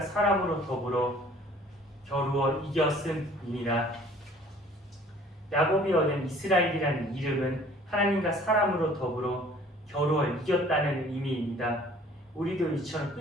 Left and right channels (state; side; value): normal; both; correlation 0.52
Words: 사람으로 더불어 겨루어 이겼음이니라. 야곱이 얻은 이스라엘이라는 이름은 하나님과 사람으로 더불어 겨루어 이겼다는 의미입니다. 우리도 이처럼